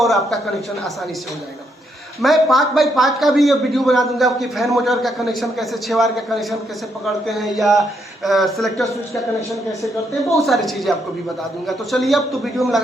आपका कनेक्शन आसानी से हो जाएगा। मैं 5x5 का भी ये वीडियो बना दूंगा कि फैन मोटर का कनेक्शन कैसे, 6 वायर का कनेक्शन कैसे पकड़ते हैं, या सेलेक्टर स्विच का कनेक्शन कैसे करते हैं, बहुत सारी चीज़ें आपको भी बता दूंगा। तो चलिए अब तो वीडियो में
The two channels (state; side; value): normal; both; correlation 0.76